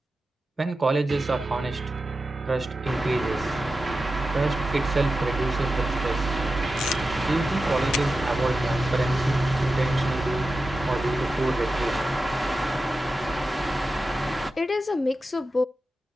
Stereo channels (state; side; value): normal; both; correlation 0.92